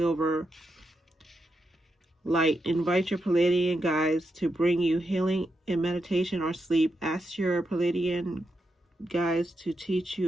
Light. Invite your Pleiadian guides to bring you healing in meditation or sleep. Ask your Pleiadian guides to teach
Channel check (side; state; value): both; normal; correlation 0.85